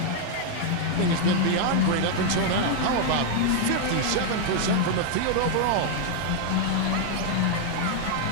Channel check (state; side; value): different; both; correlation 0.00